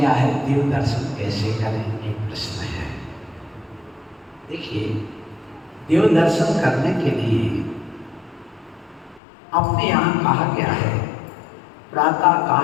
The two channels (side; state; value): right; drops out; at 9.2 s